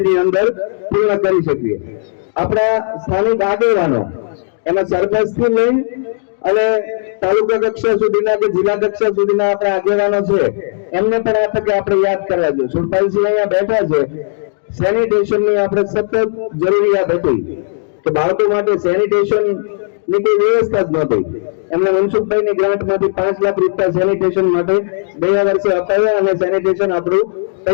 અંદર પૂર્ણ કરી શકીએ. આપણા સ્થાનિક આગેવાનો એમાં સરપંચથી લઈ અને તાલુકા કક્ષા સુધીના કે જિલ્લા કક્ષા સુધીના આપણા આગેવાનો છે એમને પણ આ તકે આપણે યાદ કરવા જોઈએ. સુરપાલસિંહ અહીંયા બેઠા છે. સેનિટેશનની આપણે સતત જરૂરિયાત હતી કે બાળકો માટે સેનિટેશન ની કોઈ વ્યવસ્થા જ નહોતી. એમને મનસુખભાઈની ગ્રાન્ટમાંથી 5 લાખ રૂપિયા સેનિટેશન માટે ગયા વર્ષે અપાયા અને સેનિટેશન આપણું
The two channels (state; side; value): silent; right; digital silence